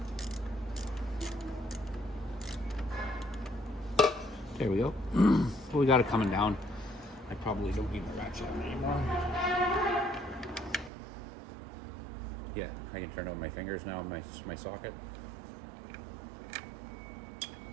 There we go. Well, we got it coming down. I probably don't need my ratchet anymore. Yeah, I can turn on my fingers now, my socket.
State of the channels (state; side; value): drops out; left; at 10.9 s